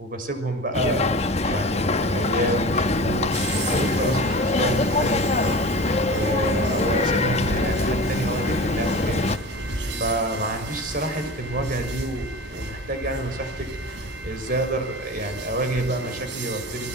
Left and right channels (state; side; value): normal; both; correlation 0.34